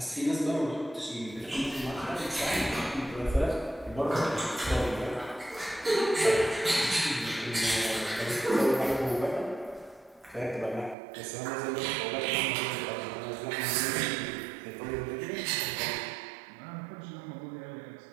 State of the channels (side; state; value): left; drops out; at 11.0 s